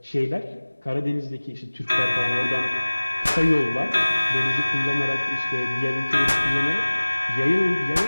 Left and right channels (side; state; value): both; inverted; correlation -1.00